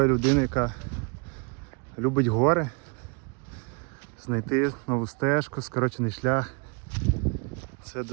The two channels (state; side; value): quieter; left; 35.1 dB